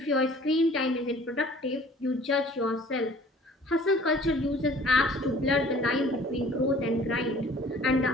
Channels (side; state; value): both; normal; correlation 0.51